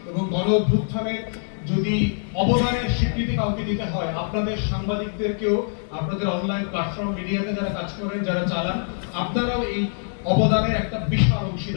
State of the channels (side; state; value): right; silent; 63 dB below the other